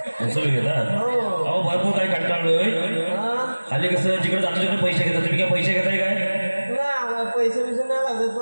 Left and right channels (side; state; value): both; inverted; correlation -1.00